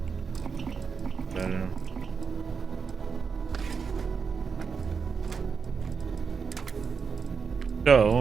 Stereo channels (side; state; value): left; quieter; 5.7 dB